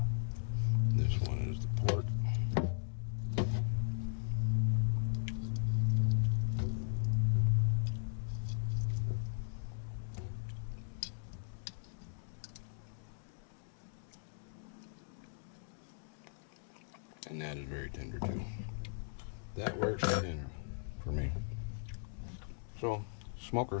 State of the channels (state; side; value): silent; right; digital silence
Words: This one is the pork. And that is very tender too. That works for dinner for me. So,